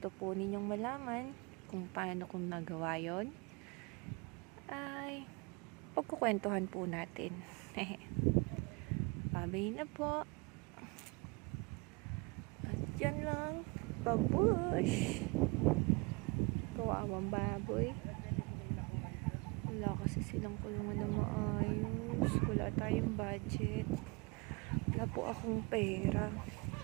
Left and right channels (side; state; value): left; quieter; 28.3 dB